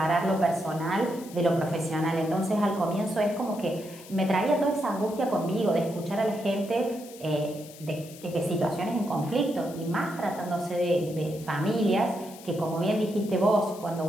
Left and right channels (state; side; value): noise; left; hiss, 18 dB below the sound